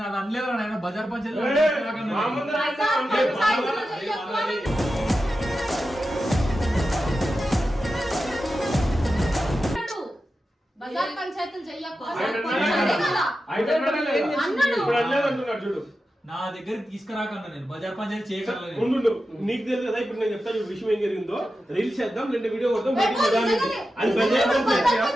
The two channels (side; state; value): both; normal; correlation 0.91